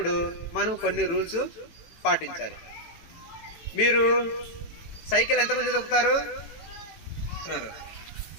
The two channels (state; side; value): late; right; 18 ms